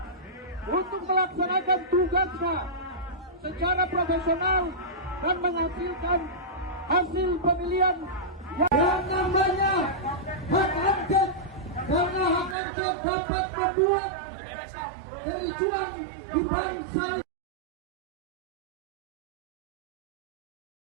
untuk melaksanakan tugasnya secara profesional dan menghasilkan hasil pemilihan Yang namanya hak angket, karena hak angket dapat membuat kericuan di bangsa.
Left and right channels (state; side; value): drops out; left; at 12.6 s